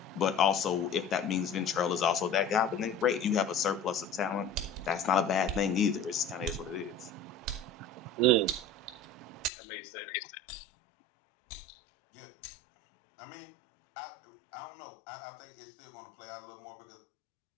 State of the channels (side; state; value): right; drops out; at 9.5 s